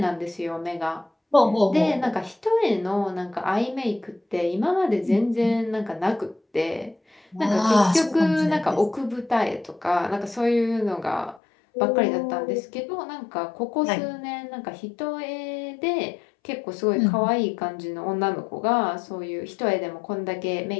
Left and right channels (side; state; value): right; drops out; at 11.4 s